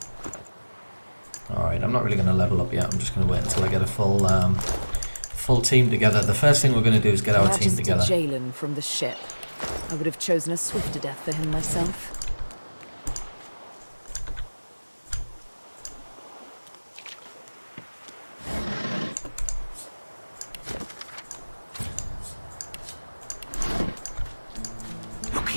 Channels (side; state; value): both; inverted; correlation -1.00